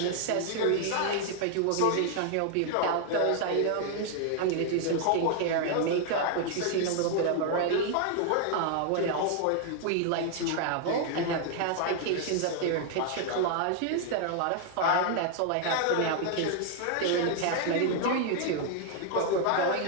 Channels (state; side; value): different; both; correlation 0.00